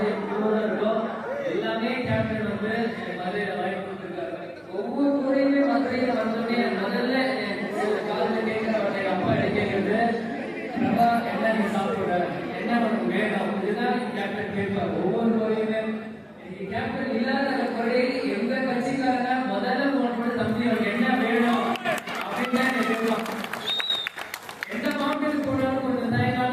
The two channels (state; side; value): identical; both; correlation 1.00